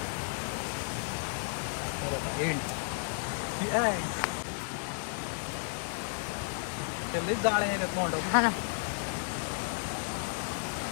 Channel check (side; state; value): right; silent; 56 dB below the other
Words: एंड त्याला जाळ्या येतात तोंडावर. हा ना.